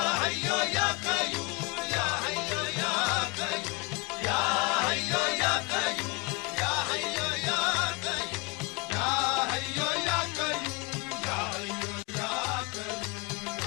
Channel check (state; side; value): quieter; right; 29.0 dB